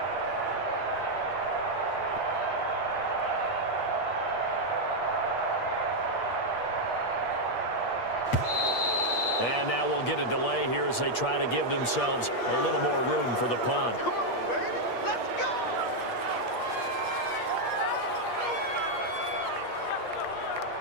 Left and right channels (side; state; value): right; late; 8.5 ms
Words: And now we'll get a delay here as they try to give themselves a little more room for the punt. Come on, baby. Let's go.